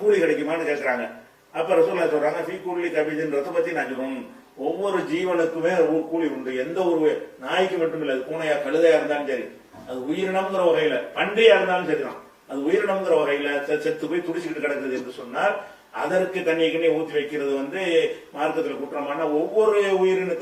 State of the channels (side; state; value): both; identical; correlation 1.00